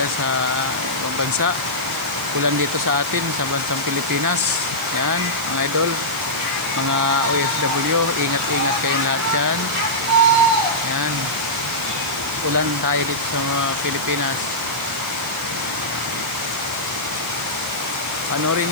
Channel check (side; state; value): right; noise; hiss, 16 dB below the sound